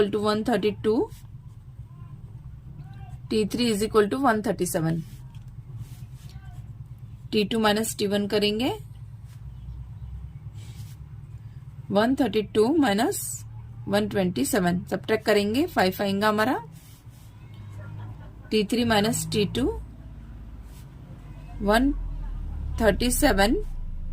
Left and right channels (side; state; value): both; identical; correlation 1.00